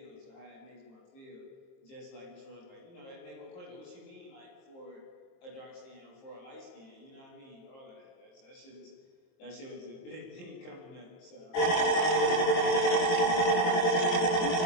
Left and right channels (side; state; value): right; late; 22 ms